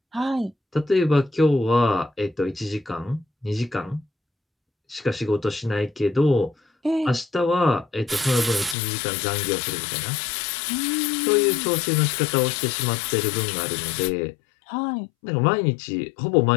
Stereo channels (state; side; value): drops out; right; at 8.8 s